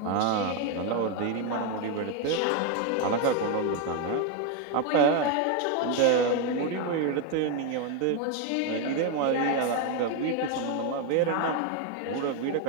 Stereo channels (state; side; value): different; both; correlation 0.02